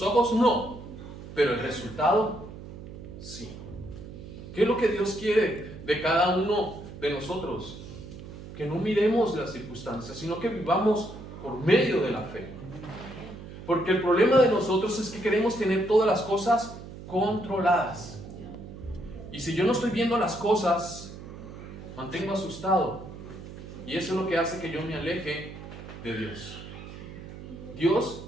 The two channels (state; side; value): noise; right; hum, 13 dB below the sound